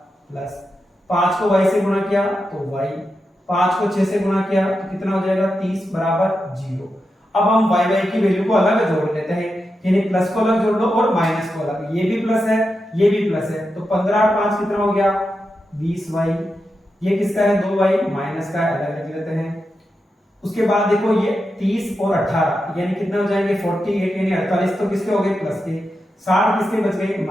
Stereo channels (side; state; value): both; normal; correlation 0.88